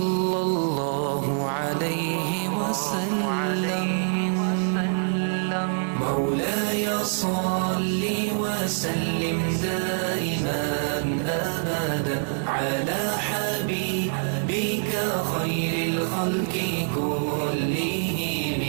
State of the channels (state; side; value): silent; left; 57 dB below the other